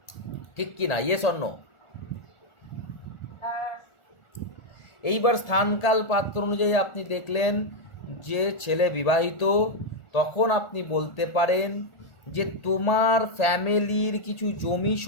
ঠিক কি না? Yes or no? হ্যাঁ। এইবার স্থানকাল পাত্র অনুযায়ী আপনি দেখলেন যে ছেলে বিবাহিত, তখন আপনি বলতে পারেন যে তোমার ফ্যামিলির কিছু জমি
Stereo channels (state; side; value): late; right; 1.4 ms